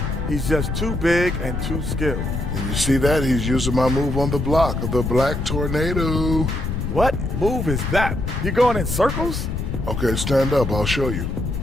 He's just too big and too skilled. And you see that? He's using my move on the block of the Black Tornado. What move is that? You going in circles? Okay, stand up. I'll show you.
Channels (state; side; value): noise; left; rumble, 3 dB below the sound